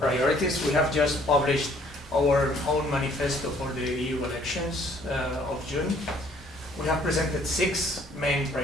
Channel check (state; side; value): normal; both; correlation 0.61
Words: We have just published our own manifesto for the EU elections of June. We have presented 6 main